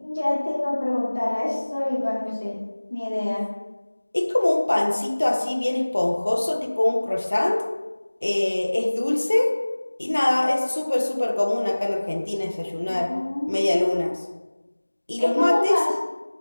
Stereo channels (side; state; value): both; inverted; correlation -1.00